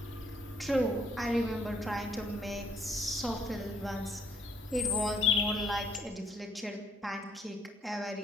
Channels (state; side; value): normal; both; correlation 0.65